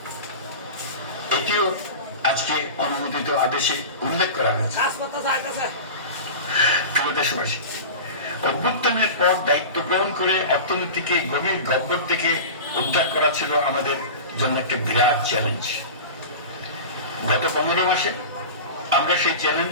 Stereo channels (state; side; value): inverted; both; correlation -0.31